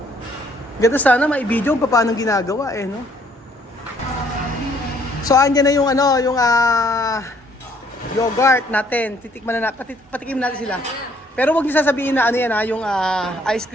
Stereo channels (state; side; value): normal; both; correlation 0.64